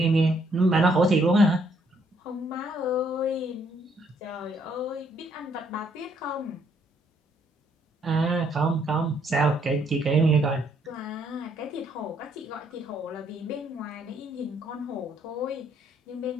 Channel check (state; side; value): normal; both; correlation 0.69